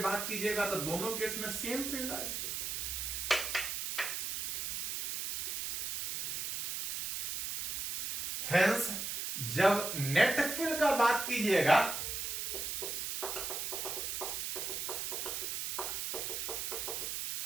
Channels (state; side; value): noise; right; hiss, 3 dB below the sound